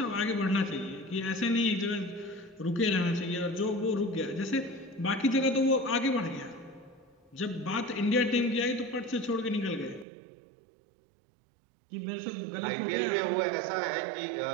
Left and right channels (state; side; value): drops out; left; at 10.1 s